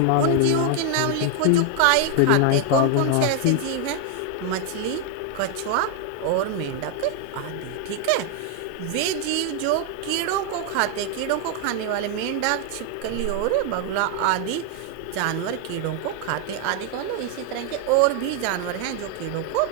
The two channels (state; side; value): different; both; correlation 0.00